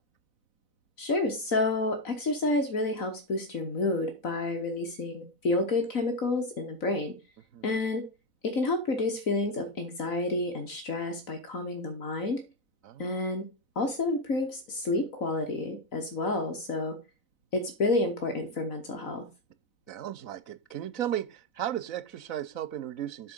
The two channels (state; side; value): late; right; 4.0 ms